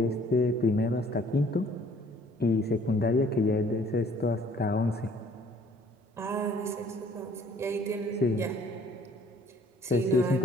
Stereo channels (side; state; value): both; normal; correlation 0.58